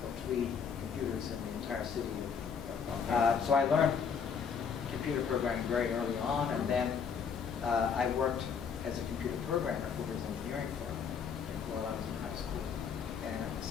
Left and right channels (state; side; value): quieter; right; 6.6 dB